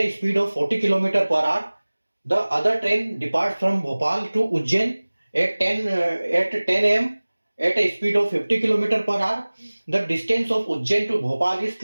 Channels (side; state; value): both; inverted; correlation -1.00